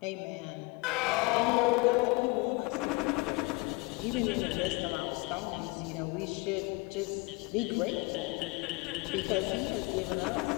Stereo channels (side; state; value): right; quieter; 25.8 dB